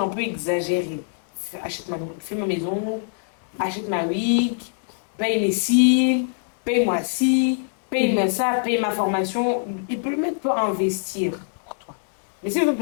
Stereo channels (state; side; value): silent; right; 63 dB below the other